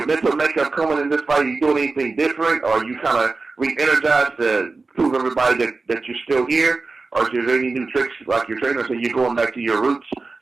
mental makeup coming in this fight. Are you doing anything different, or are you kind of re-energized to prove everybody that you're still here? Or is there any new tricks, like your trainer said, you're going back to your roots? Is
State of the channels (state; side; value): quieter; left; 3.8 dB